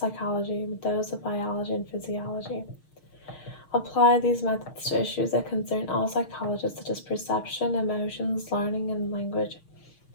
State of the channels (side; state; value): right; late; 6.5 ms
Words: with those of biology and physiology. Apply these methods to issues that concern all psychologists, such as perception, emotions, learning, and language.